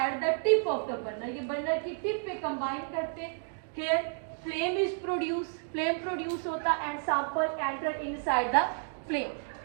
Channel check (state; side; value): silent; left; 57 dB below the other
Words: at the tip of the burner. ये बर्नर की टिप पे कंबाइन करते हैं। Here flame is produce, flame produce होता and sample enter inside the flame.